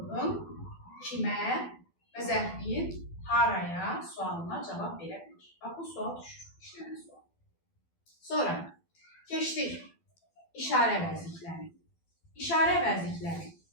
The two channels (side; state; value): right; late; 12 ms